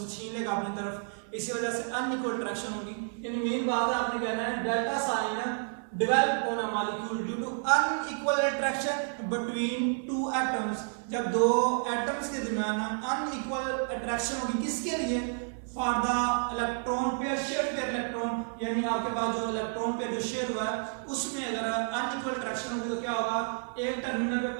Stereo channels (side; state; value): left; silent; 57 dB below the other